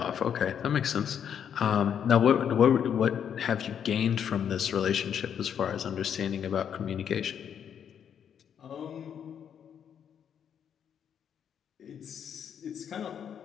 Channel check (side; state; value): right; quieter; 8.4 dB